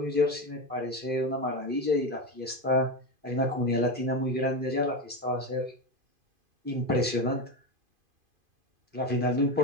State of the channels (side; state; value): left; late; 2.5 ms